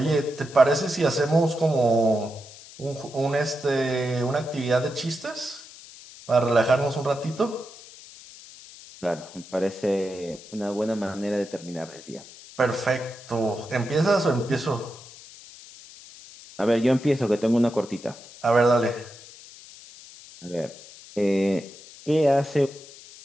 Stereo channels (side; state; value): left; noise; hiss, 19 dB below the sound